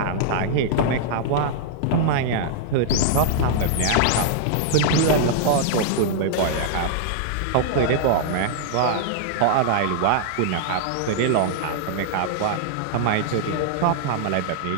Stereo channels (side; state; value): both; different; correlation -0.01